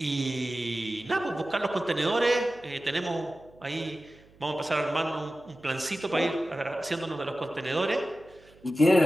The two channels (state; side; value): noise; right; hum, 27 dB below the sound